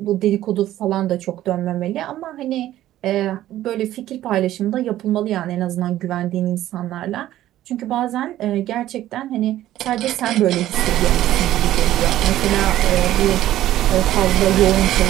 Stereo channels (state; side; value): quieter; left; 13.7 dB